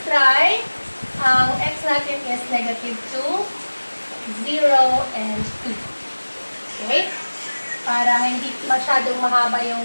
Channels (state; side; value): inverted; both; correlation -1.00